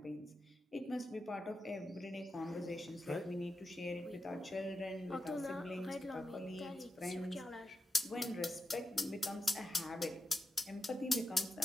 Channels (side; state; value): both; normal; correlation 0.87